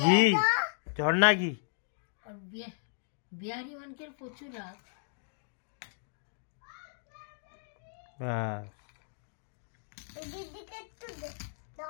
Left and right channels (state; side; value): silent; right; digital silence